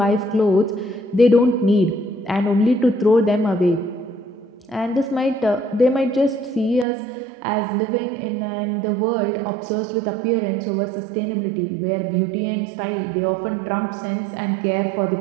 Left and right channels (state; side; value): drops out; left; at 6.9 s